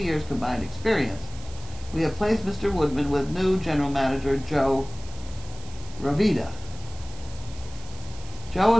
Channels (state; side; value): noise; right; hiss, 19 dB below the sound